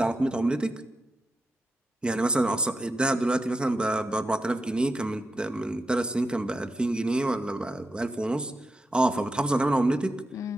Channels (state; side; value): normal; both; correlation 0.87